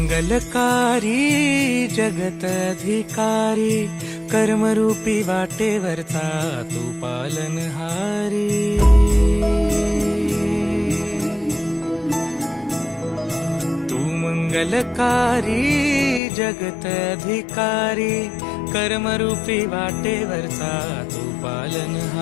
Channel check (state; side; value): drops out; right; at 16.2 s